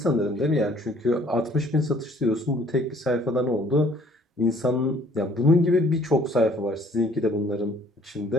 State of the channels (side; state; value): both; normal; correlation 0.58